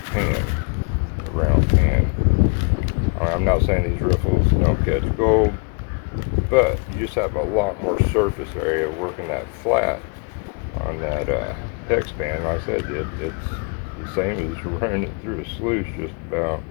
pan, a round pan. I'm not saying these riffles don't catch gold, but you just have a lot more surface area working that flat on that hex pan. Like I said, it's the same as running it through a sluice, just about.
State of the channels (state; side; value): quieter; right; 35.2 dB